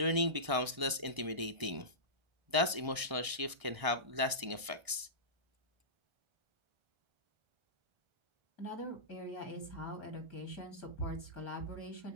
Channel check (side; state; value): left; late; 1.0 ms